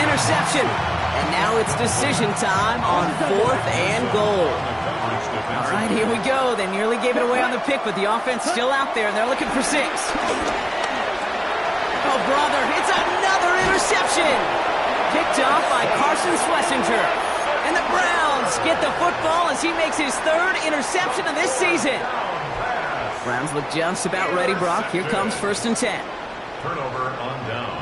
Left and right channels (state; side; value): identical; both; correlation 1.00